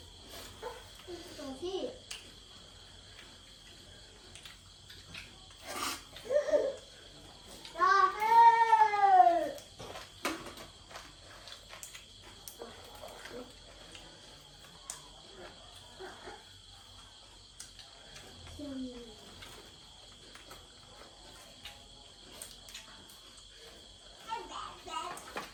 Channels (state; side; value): identical; both; correlation 1.00